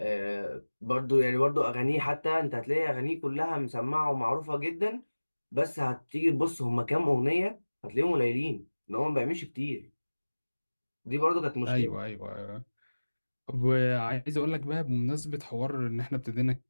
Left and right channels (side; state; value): both; inverted; correlation -1.00